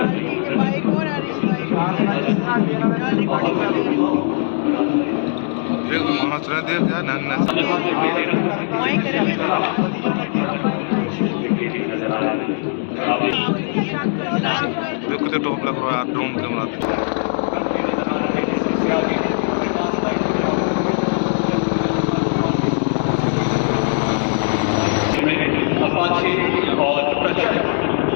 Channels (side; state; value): right; silent; digital silence